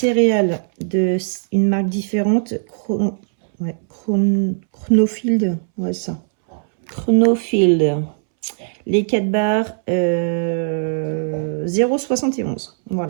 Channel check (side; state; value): left; silent; 66 dB below the other